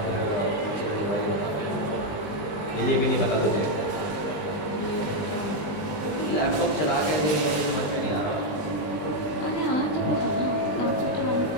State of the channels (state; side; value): late; right; 20 ms